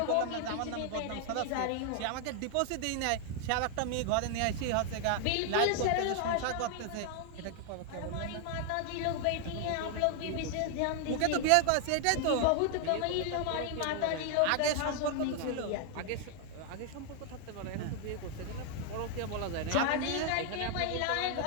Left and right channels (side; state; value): both; different; correlation 0.00